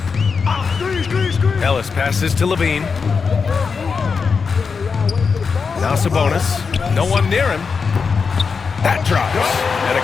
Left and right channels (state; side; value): quieter; right; 5.3 dB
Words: Ellis passes to Levine. Now Sabonis. No one near him. That drops. And it